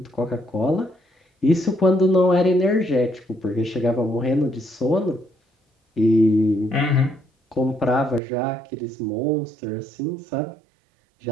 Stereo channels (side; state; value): left; drops out; at 8.2 s